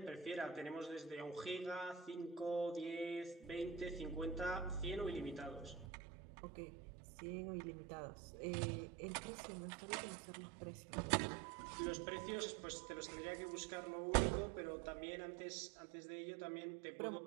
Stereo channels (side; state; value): left; drops out; at 5.9 s